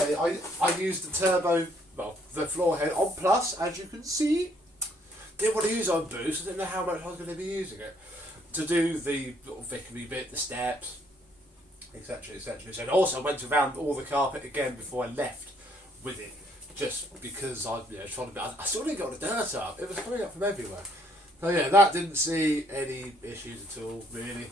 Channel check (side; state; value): both; normal; correlation 0.67